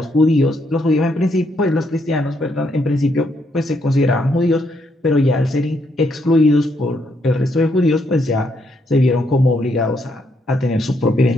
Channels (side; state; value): both; normal; correlation 0.75